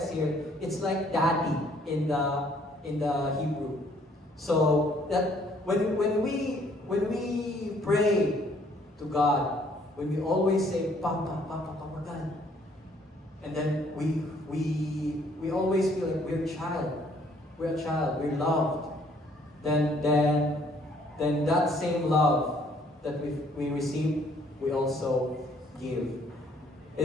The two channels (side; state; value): both; normal; correlation 0.63